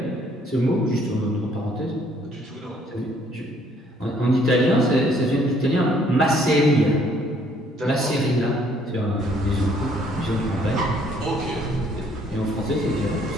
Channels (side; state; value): both; normal; correlation 0.63